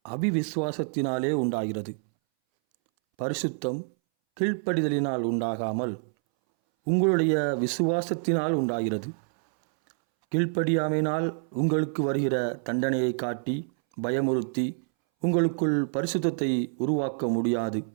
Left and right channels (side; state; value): left; silent; 60 dB below the other